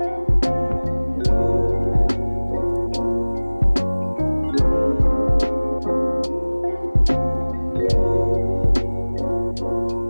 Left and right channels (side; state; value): both; inverted; correlation -1.00